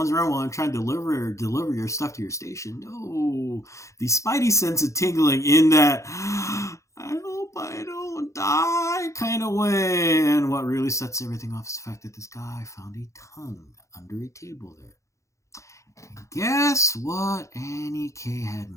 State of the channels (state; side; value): late; right; 0.15 ms